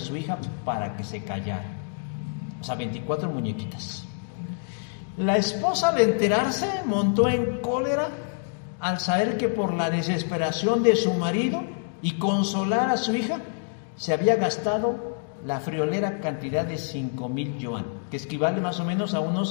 hija para que se callara. O sea, 24 muñequitas. La esposa, al enterarse, montó en cólera al saber que por la desesperación de su marido y consolar a su hija, se había gastado la friolera cantidad de 5,000 yuan, que equivale más o menos a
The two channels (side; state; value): right; silent; digital silence